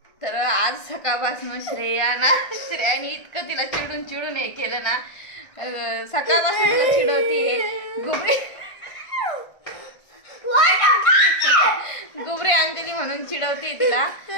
तर आज सकाळपासून श्रेयाने इतकं तिला चिडून चिडून हे केलं ना सकाळपासून तिला चिडवती गुबरी गुबरी अंजली म्हणून चिडवते तिला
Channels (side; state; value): right; late; 1.5 ms